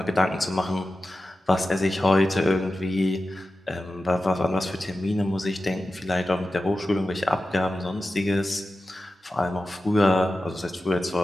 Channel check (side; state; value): both; normal; correlation 0.94